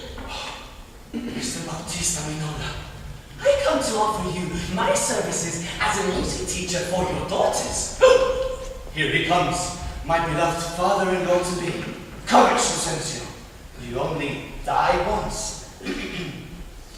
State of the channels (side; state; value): both; identical; correlation 1.00